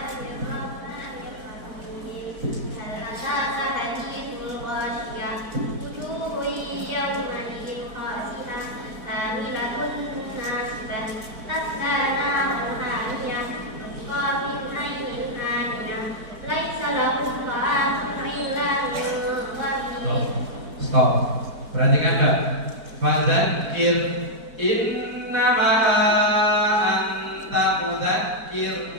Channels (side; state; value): left; late; 4.5 ms